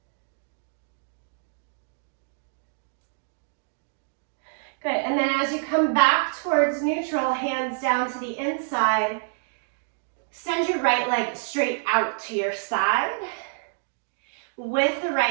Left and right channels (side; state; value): left; silent; digital silence